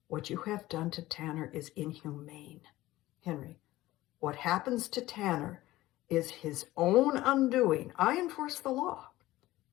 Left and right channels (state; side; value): quieter; right; 16.8 dB